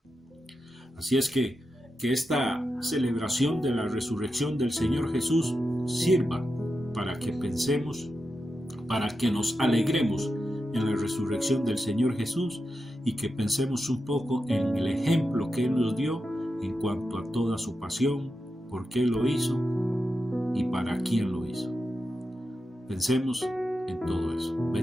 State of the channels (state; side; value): normal; both; correlation 0.89